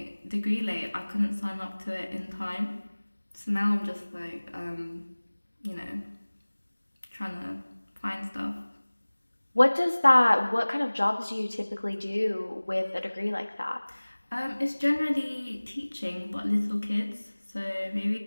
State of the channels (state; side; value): inverted; both; correlation -1.00